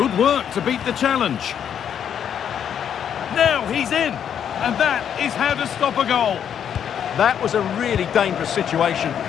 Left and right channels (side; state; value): right; quieter; 8.7 dB